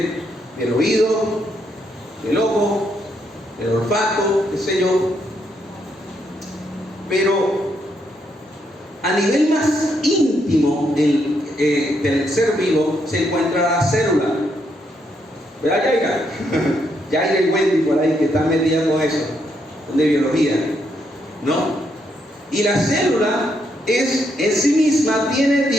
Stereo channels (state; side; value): normal; both; correlation 0.77